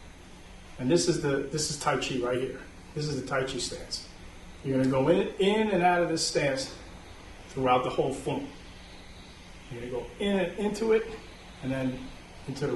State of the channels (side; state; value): both; identical; correlation 1.00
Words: And this is Tai Chi right here. This is the Tai Chi stance. You're going to go in and out of this stance throughout the whole form. You're going to go in and into it, and then into the